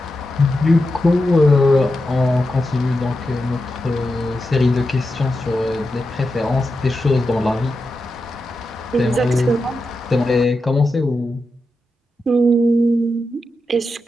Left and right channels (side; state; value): both; normal; correlation 0.89